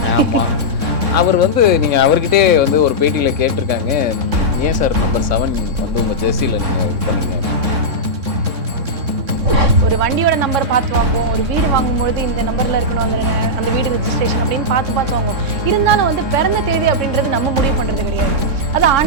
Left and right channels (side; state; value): left; late; 3.6 ms